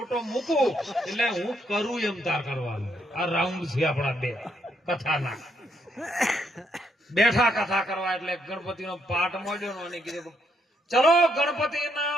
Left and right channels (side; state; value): both; normal; correlation 0.75